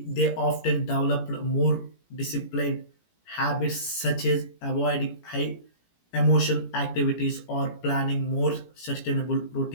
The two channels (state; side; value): late; right; 17 ms